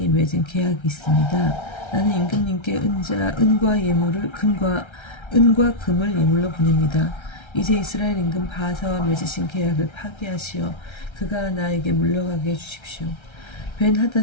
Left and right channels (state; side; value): late; right; 1.3 ms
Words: 맺은 계약이 있습니다. 나는 임금님께 은과 금을 예물로 보냅니다. 이제 이스라엘 임금 바하사와 맺으신 계약을 파기하시어 그가 나에게 물러가게 해주십시오. 벤